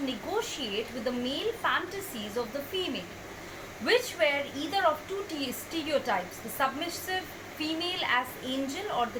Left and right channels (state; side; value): identical; both; correlation 1.00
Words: negotiate with the male fantasies of the female, which were either of two stereotypes, the submissive female as angel or